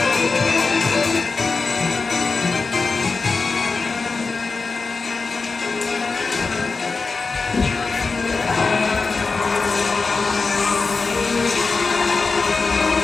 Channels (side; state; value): right; quieter; 4.3 dB